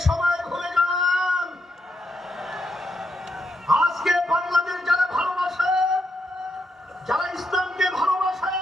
সময় ভুলে যান। আজকে বাংলাদেশ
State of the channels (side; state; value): both; normal; correlation 0.80